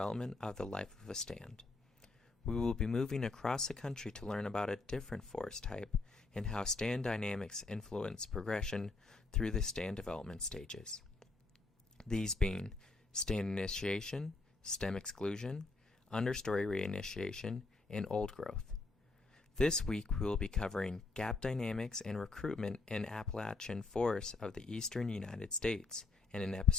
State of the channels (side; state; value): right; quieter; 3.6 dB